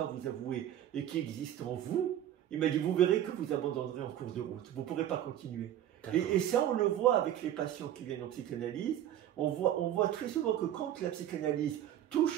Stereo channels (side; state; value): left; quieter; 11.4 dB